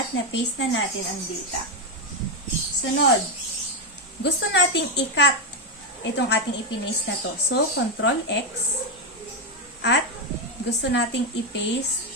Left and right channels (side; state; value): both; normal; correlation 0.06